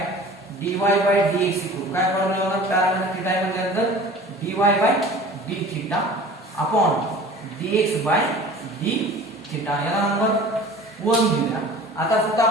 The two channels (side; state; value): both; normal; correlation 0.42